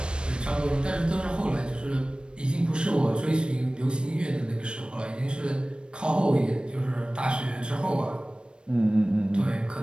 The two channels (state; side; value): late; left; 0.054 ms